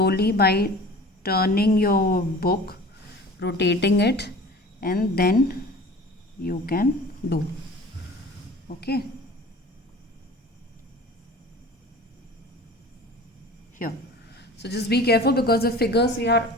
by turning your book, rotating it, and then you can do. Okay, here. So just be careful, because the figures we are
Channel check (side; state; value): both; normal; correlation 0.42